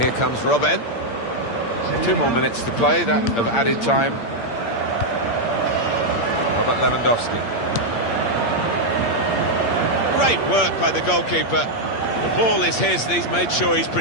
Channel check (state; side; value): late; right; 8.6 ms